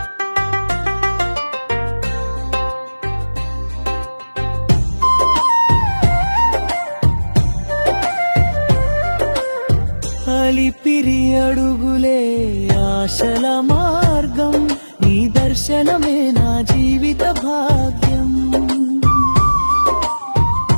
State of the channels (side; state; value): both; inverted; correlation -1.00